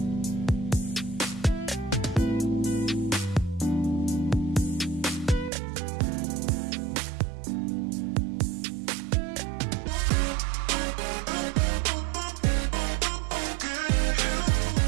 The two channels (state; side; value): drops out; left; at 5.5 s